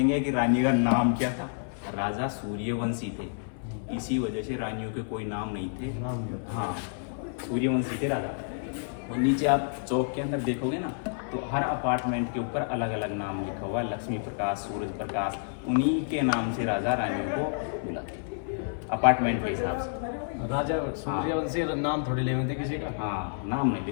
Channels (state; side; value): silent; right; 58 dB below the other